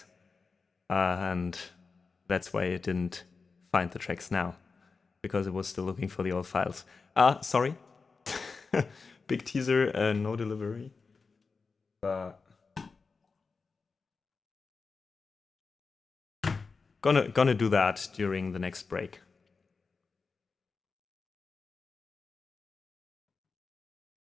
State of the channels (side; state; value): right; quieter; 4.6 dB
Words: and that's why it didn't find the tracks now, because it was still looking for the old files. Sorry. Big teaser, no delivery. But gonna do that during the next break.